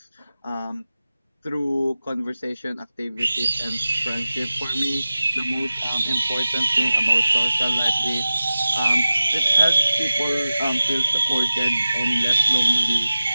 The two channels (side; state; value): both; inverted; correlation -0.94